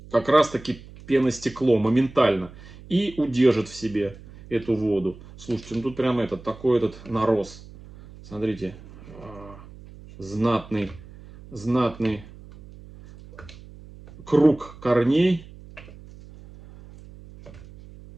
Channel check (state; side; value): noise; right; hum, 19 dB below the sound